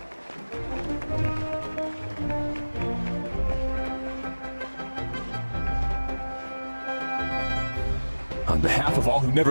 On behalf of all who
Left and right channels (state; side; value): inverted; both; correlation -1.00